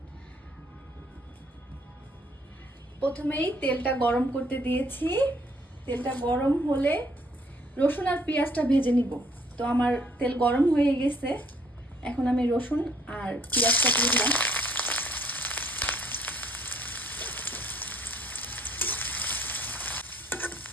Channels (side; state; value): both; normal; correlation 0.63